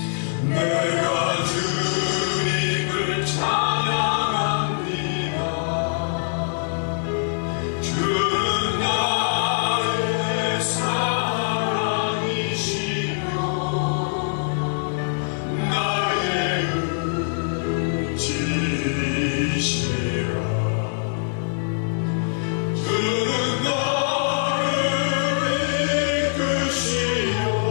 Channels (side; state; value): right; silent; 63 dB below the other